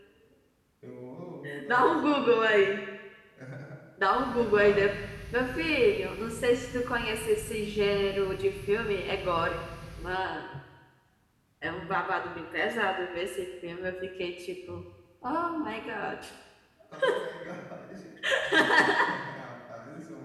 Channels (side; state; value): both; identical; correlation 1.00